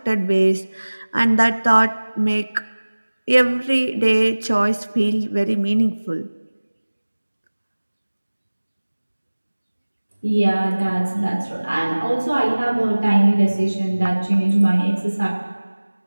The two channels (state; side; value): inverted; both; correlation -1.00